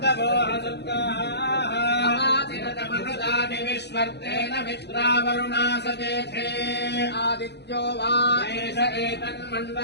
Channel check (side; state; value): right; late; 0.49 ms